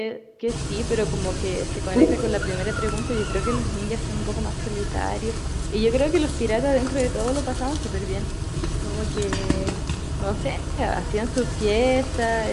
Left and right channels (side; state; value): both; identical; correlation 1.00